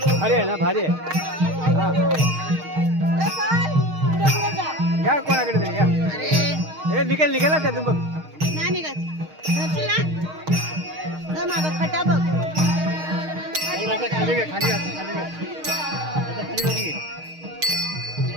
भारी आहे ना, भारी आहे. हा. घ्या कोणाकडे तरी घ्या. हे निघेल ना त्यातून बघ. नाही निघत. मागं खटा बघ. खाली घे, खाली घे.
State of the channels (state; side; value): late; left; 6.4 ms